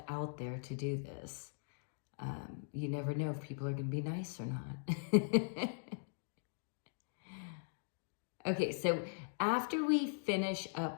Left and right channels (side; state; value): right; silent; digital silence